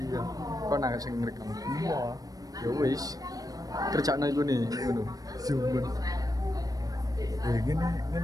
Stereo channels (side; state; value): left; late; 0.18 ms